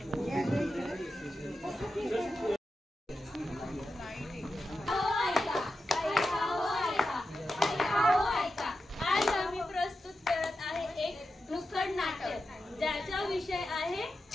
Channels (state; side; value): normal; both; correlation 0.90